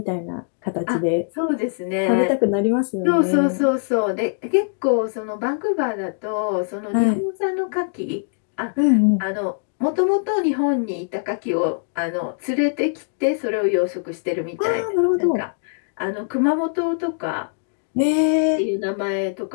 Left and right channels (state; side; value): silent; right; digital silence